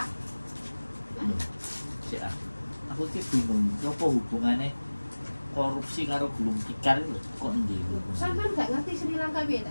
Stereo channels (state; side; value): inverted; both; correlation -1.00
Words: Loh, sik ah. Aku ki bingung, apa hubungannya korupsi karo gulung tikar itu kok endi hubungannya? Sampean nggak ngerti Sri Lanka